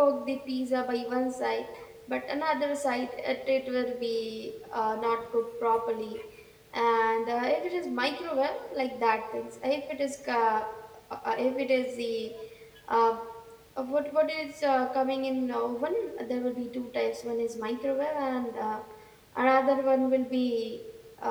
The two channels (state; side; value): identical; both; correlation 1.00